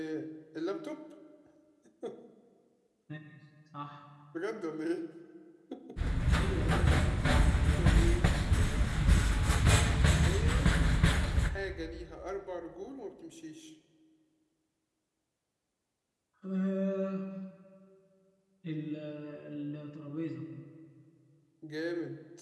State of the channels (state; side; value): identical; both; correlation 1.00